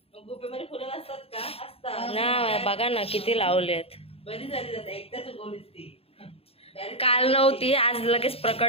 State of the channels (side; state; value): right; late; 0.28 ms